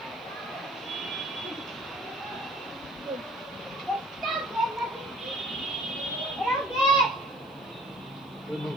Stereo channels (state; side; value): noise; left; hiss, 30 dB below the sound